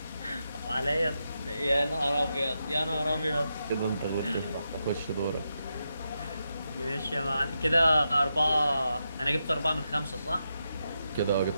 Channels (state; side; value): inverted; both; correlation -0.86